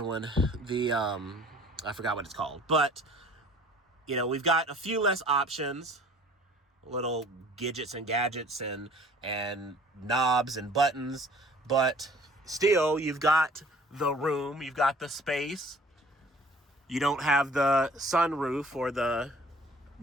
one? I forgot what it's called. But we've got a few less options, little gadgets and knobs and buttons, but still you've got the room, you've got the space. You don't have the sunroof or the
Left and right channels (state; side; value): normal; both; correlation 0.52